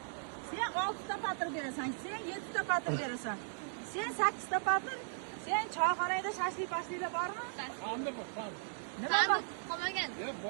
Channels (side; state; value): left; silent; digital silence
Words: Sen 6 ta patir berasan, sen 7 ta patir berasan. Sen 8 ta patir, sen choyxonada shashlik-pashliklar bormi? Qanday bu? Nima bor? Qolmagan.